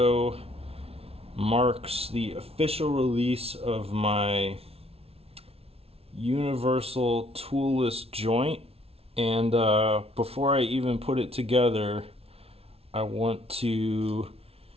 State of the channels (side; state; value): left; late; 0.29 ms